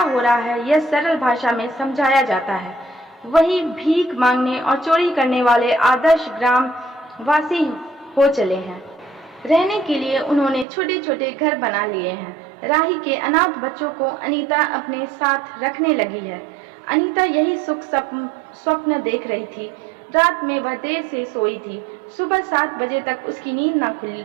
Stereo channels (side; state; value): left; drops out; at 10.7 s